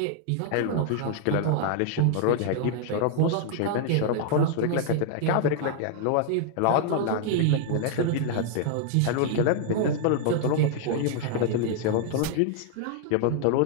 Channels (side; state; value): both; different; correlation -0.01